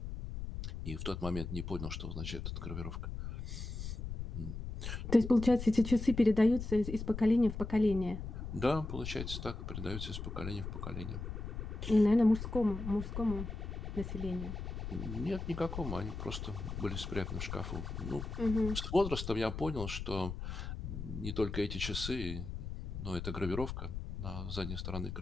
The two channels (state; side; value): noise; left; rumble, 6 dB below the sound